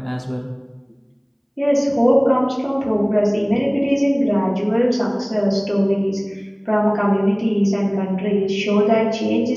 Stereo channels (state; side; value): identical; both; correlation 1.00